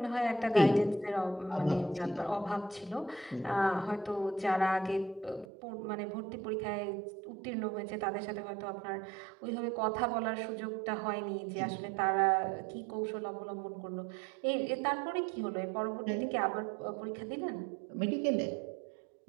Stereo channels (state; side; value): drops out; left; at 5.5 s